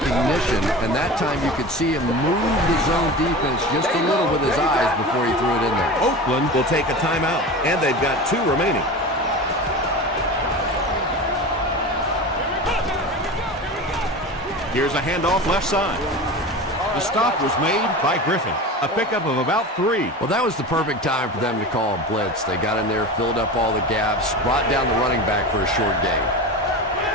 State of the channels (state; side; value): normal; both; correlation 0.30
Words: and that time you could see him move the zone defense just a little with his eyes before he threw it in there. Oakland will take a timeout, and they've got 2 remaining. Here's a handoff left side. The stop was made by Griffin. A pickup of about 3. Well, that was the perfect time for them to call a blitz. They got in there, filled up all the gaps, brought down the running back for a short gain.